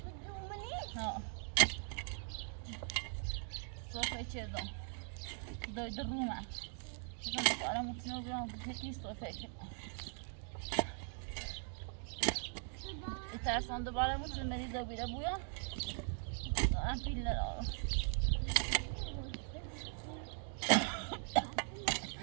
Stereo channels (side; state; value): left; silent; 51 dB below the other